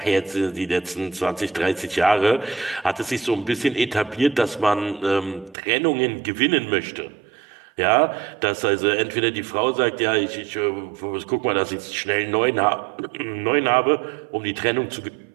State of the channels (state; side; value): drops out; left; at 5.6 s